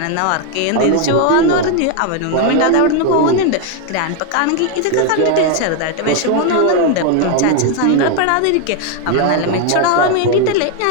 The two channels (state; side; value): different; both; correlation 0.01